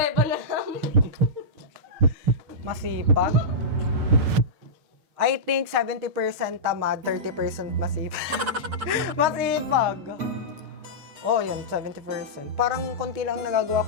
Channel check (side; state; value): left; late; 6.7 ms